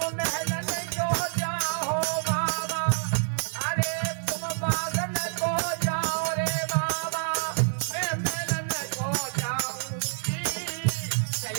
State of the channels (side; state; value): left; silent; digital silence